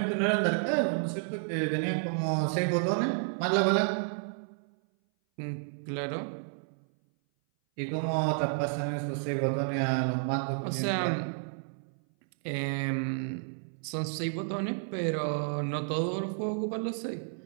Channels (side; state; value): left; silent; 57 dB below the other